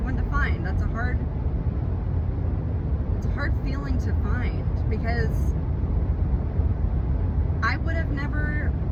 one to find. It's a hard feeling to find, because I would have never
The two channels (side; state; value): both; identical; correlation 1.00